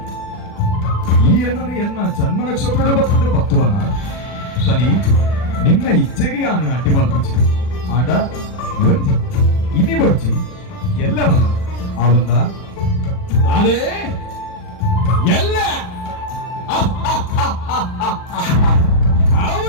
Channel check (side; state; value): right; late; 40 ms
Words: ಈ ಎನ್ನನು ಎನ್ನ ಜನ್ಮ ನಕ್ಷತ್ರದ ಬರ್ತದೆ ಪತ್ವನ ಶನಿ ನಿನ್ನ ಇಚ್ಛೆಗೆ ಯಾನು ಅಡ್ಡಿ ಮಲ್ಪುಚಿ ಆಂಡ ಒಂಜಿ ಇನಿ ಬರ್ಚಿ ಎಲ್ಲ ಬಲ್ಲ ಆವಂದ ನಾನೇ ಎಲ್ಲ